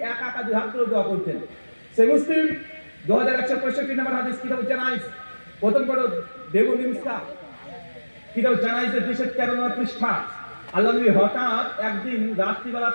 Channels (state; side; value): inverted; both; correlation -1.00